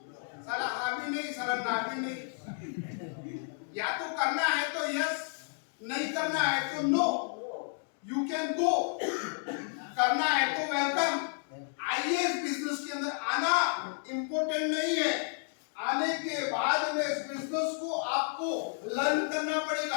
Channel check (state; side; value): silent; right; 57 dB below the other